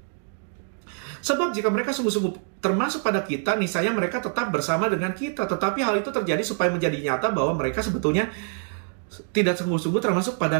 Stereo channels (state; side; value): silent; left; 62 dB below the other